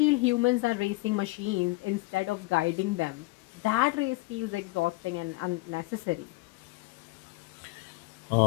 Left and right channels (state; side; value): quieter; right; 22.0 dB